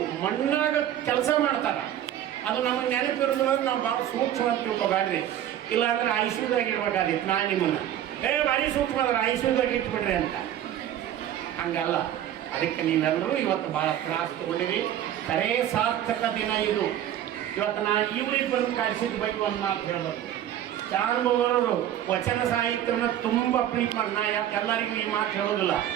ಮಣ್ಣಾಗ ಕೆಲಸ ಮಾಡ್ತಾರೆ. ಅದು ನಮಗೆ ನೆನಪಿರೋದಿಲ್ಲ. ನಾವು ಭಾಳ ಸೂಕ್ಷ್ಮ ಅಂತ ತಿಳ್ಕೊಬೇಡ್ರಿ. ಇಲ್ಲಾಂದ್ರೆ ಐಶ್ವರ್ಯದಾಗ ಇಡ್ಬೇಕಾದಿತ್ತು. ನಾನು ನಿಮ್ಮನ್ನು ಭಾರಿ ಸೂಕ್ಷ್ಮ ಅದ್ರ ಐಶ್ವರ್ಯದಾಗ ಇಟ್ಬಿಡ್ರಿ ಅಂತ. ಹಂಗಲ್ಲ. ಅದಕ್ಕೆ ನೀವೆಲ್ಲರೂ ಇವತ್ತು ಭಾಳ ತ್ರಾಸ ತಗೊಂಡಿರಿ. ಖರೇ ಸಾರ್ಥಕ ದಿನ ಇದು. ಇವತ್ತು ನಾನು ಇವ್ರಿಗೆ ಬಂದು ಕಳಿಸಿದ ಬಗ್ಗೆ ಒಂದು ಮಾತು ಹೇಳ್ಬೇಕು. ಚಾರುಮವರು ವಚನ ಸಾಹಿತ್ಯನ ತುಂಬ ಪ್ರೀತಿ ಮಾಡಿ, ನಾ ಎಲ್ಲರಿಗೂ ಈ ಮಾತು ಹೇಳೋದಿಲ್ಲ.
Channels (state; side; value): quieter; left; 11.3 dB